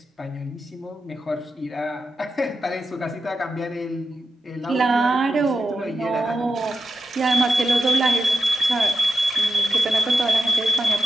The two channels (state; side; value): normal; both; correlation 0.91